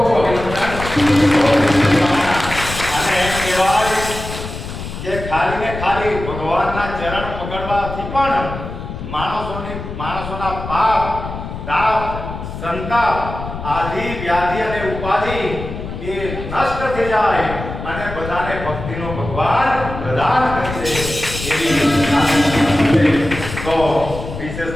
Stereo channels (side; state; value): left; noise; rumble, 8 dB below the sound